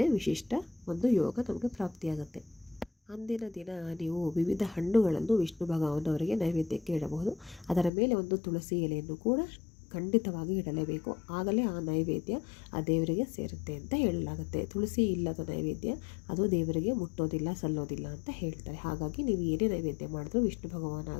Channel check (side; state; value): right; drops out; at 7.9 s